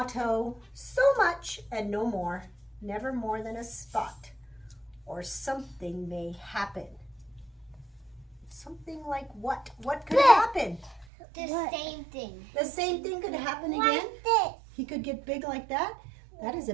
so much and no more, never more than a spot, or something may happen. Something like what? What could happen? The same thing. The same thing could happen again? Like this. He could get big like that? That is a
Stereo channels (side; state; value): left; drops out; at 11.1 s